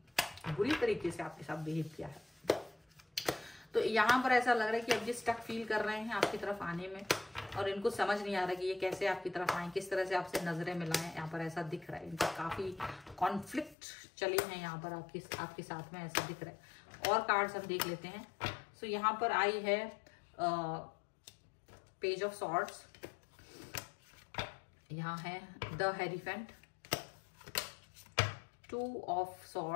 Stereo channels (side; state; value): right; drops out; at 13.8 s